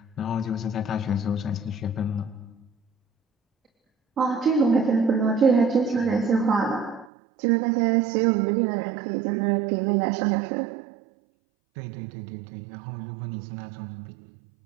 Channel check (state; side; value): drops out; left; at 7.1 s